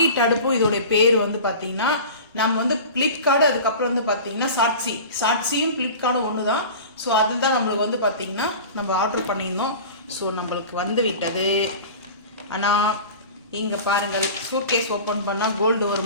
அடுப்பும் இதோடைய பேர் வந்து பார்த்தீங்கன்னா நம்ம வந்து பிளிப்கார்டு, அதுக்கப்புறம் வந்து பார்த்தீங்கன்னா சாட்சியும் பிளிப்கார்டும் ஒன்று தான். ஸோ அதுதான் நம்மளுக்கு வந்து பார்த்தீங்கன்னா நம்ம ஆர்டர் பண்ணியிருந்தோம். ஸோ நம்மளுக்கு வந்து விட்டது. ஆனால் இங்கே பாருங்கள், சூட்கேஸ் ஓப்பன் பண்ணால் கோல்டு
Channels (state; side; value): inverted; both; correlation -0.36